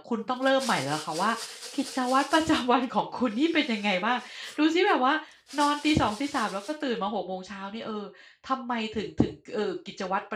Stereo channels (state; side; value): identical; both; correlation 1.00